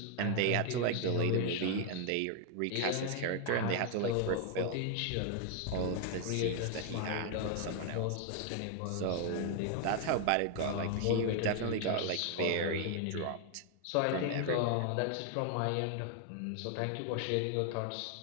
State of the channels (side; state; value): both; different; correlation 0.00